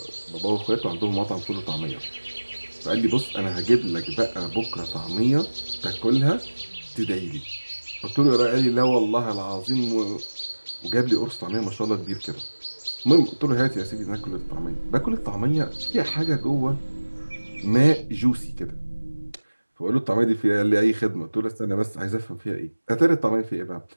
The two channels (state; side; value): inverted; both; correlation -1.00